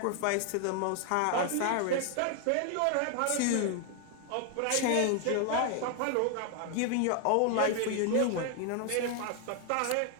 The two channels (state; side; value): different; both; correlation 0.00